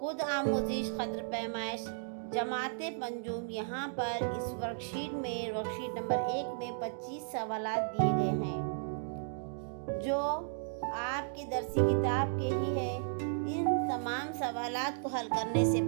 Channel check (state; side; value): silent; left; digital silence